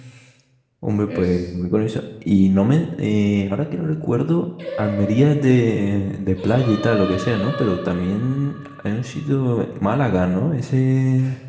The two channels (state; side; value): identical; both; correlation 1.00